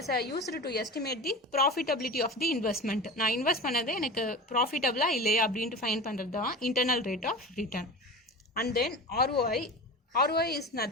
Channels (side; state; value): both; normal; correlation 0.31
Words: used to estimate the profitability of the investment. நான் invest பண்ணது எனக்கு ப்ராஃபிட்டபிளா இல்லையா அப்படின்ட்டு ஃபைண்ட் பண்ணுறது தான் internal rate of return. And then ROI. ROI is